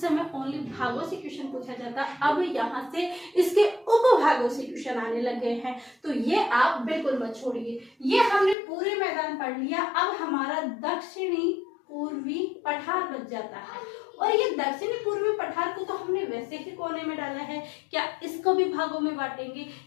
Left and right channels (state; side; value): drops out; right; at 8.6 s